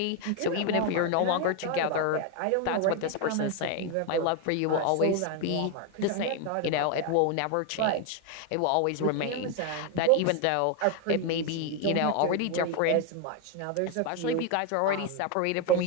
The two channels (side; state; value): both; different; correlation 0.01